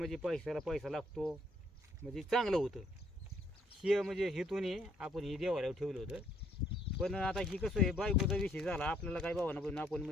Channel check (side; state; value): both; normal; correlation 0.68